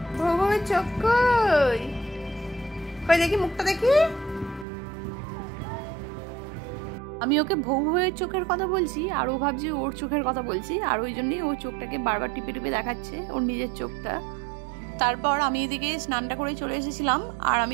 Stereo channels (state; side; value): drops out; left; at 4.7 s